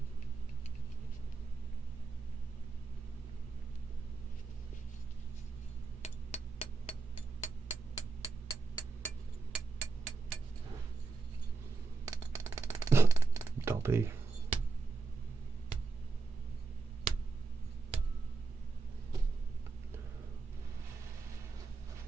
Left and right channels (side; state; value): left; quieter; 4.2 dB